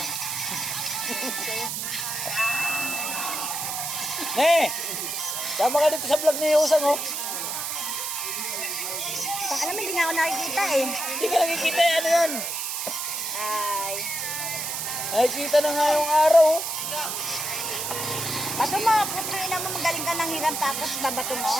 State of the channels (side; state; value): right; noise; hiss, 3 dB below the sound